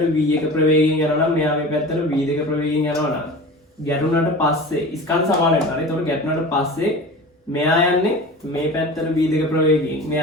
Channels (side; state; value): both; normal; correlation 0.35